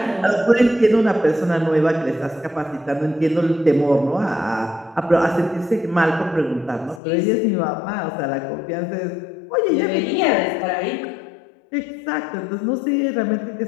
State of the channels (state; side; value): drops out; right; at 7.0 s